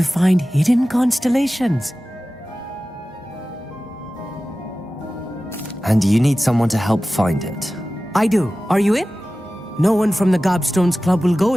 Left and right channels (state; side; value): normal; both; correlation 0.96